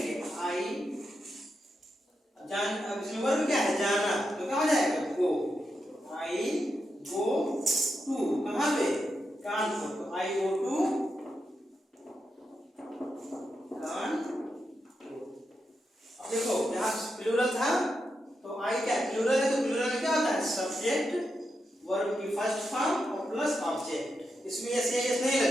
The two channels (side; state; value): both; normal; correlation 0.86